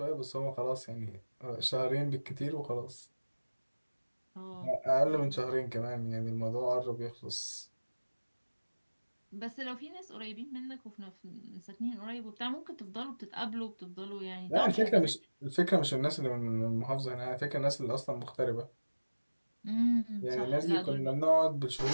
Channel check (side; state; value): both; inverted; correlation -1.00